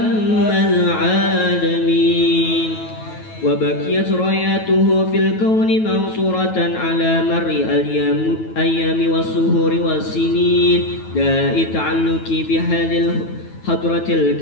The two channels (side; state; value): right; late; 9.2 ms